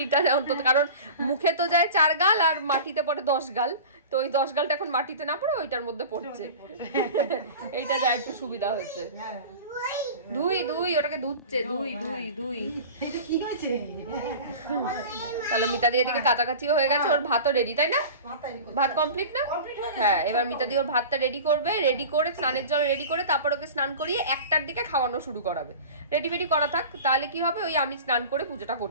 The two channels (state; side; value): inverted; both; correlation -0.36